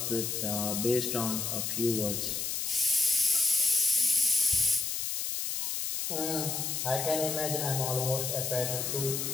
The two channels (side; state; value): left; noise; hiss, 2 dB below the sound